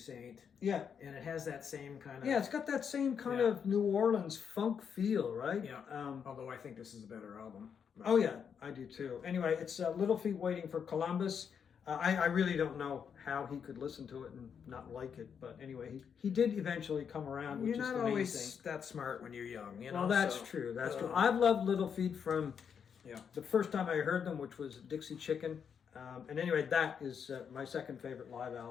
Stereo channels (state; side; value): quieter; right; 7.2 dB